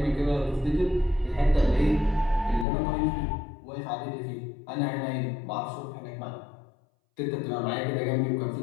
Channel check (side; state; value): right; drops out; at 2.7 s